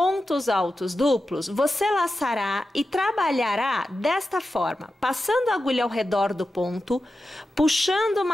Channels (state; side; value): normal; both; correlation 0.92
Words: altos duplos, você laçará e trabalhará desta forma, passando a agulha ao redor do ponto, puxando